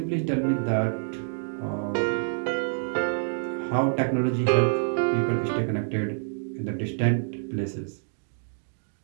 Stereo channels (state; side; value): silent; left; digital silence